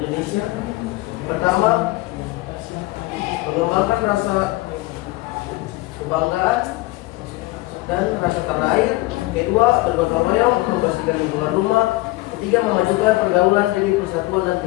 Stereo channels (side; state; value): right; quieter; 20.3 dB